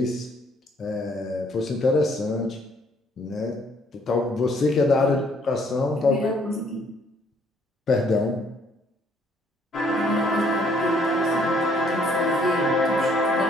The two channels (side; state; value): both; normal; correlation 0.65